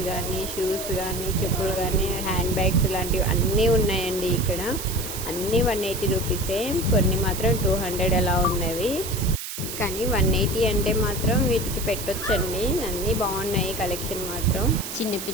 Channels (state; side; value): noise; right; hiss, 7 dB below the sound